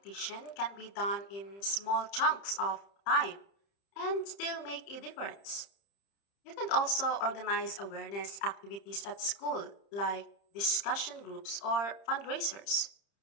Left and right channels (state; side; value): late; right; 30 ms